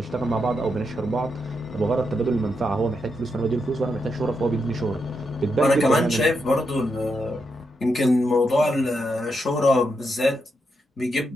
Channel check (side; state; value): both; normal; correlation 0.83